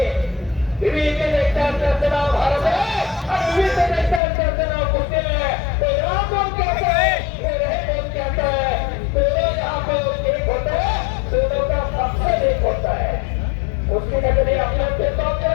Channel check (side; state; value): right; drops out; at 4.2 s